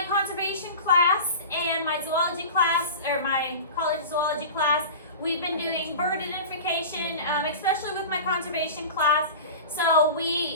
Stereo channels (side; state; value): both; inverted; correlation -0.33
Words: conservation class and my zoology class, or my college zoology class, we've been doing bird identification, especially with my conservation class. So